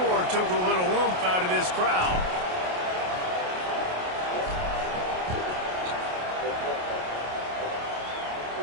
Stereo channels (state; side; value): late; left; 28 ms